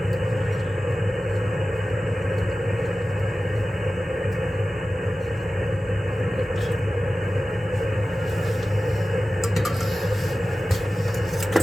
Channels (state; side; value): normal; both; correlation 0.95